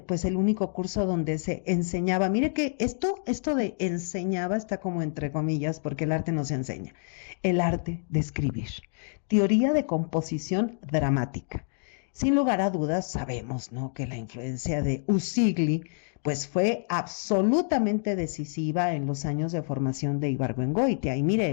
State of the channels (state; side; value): silent; right; digital silence